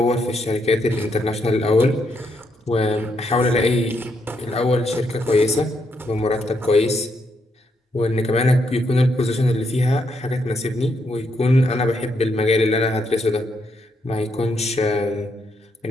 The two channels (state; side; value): normal; both; correlation 0.77